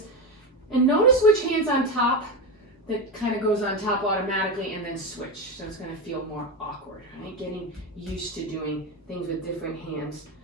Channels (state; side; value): normal; both; correlation 0.16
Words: and notice which hand's on top. That kind of goes on top automatically and then switch. So it's going to feel more awkward, right? Getting used to doing things with different hands.